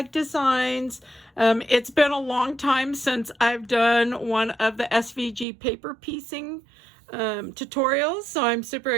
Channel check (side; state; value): left; drops out; at 5.5 s